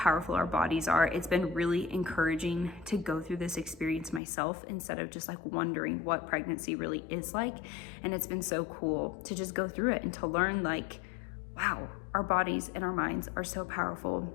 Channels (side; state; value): right; drops out; at 4.2 s